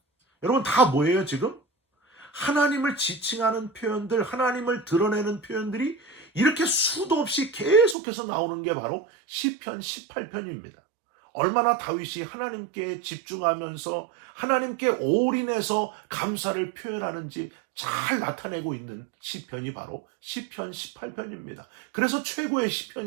여러분 다 뭐예요 지금? 하나님을 지칭하는 표현들, 하나님을 드러내는 표현들이 이렇게 수도 없이 계속해서 나오는 게 바로 시편 18편입니다. 얼마나 다윗이 하나님께 집중하면서 하나님께 올인해서 감사를 표현하는지 잘 나타내고 있는 시편이 바로 시편 18편입니다. 그래서 최고의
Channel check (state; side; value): drops out; left; at 8.0 s